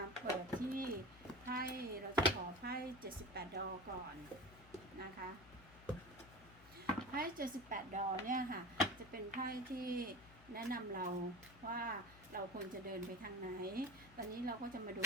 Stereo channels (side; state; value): left; noise; hum, 21 dB below the sound